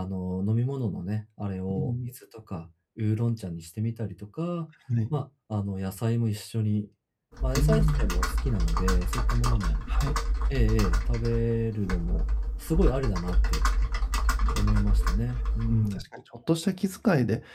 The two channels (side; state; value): both; identical; correlation 1.00